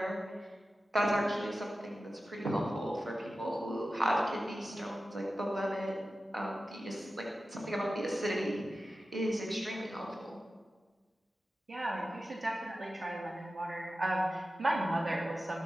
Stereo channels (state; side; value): normal; both; correlation 0.94